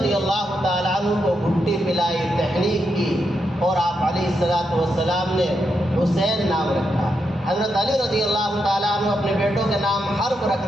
اللہ تعالیٰ عنہ کو گھٹی پلائی، تحریک کی، اور آپ علیہ الصلوۃ والسلام نے حسین نام رکھا۔ حضرت علی رضی اللہ تعالیٰ عنہ اپنے بیٹوں کے نام حرب رکھ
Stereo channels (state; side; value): normal; both; correlation 0.83